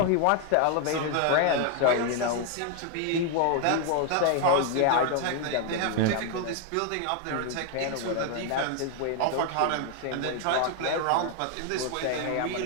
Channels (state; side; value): different; both; correlation 0.00